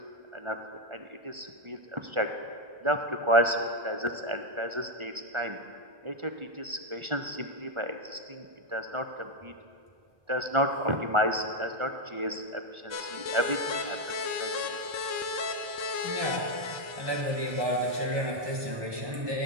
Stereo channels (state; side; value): late; left; 1.4 ms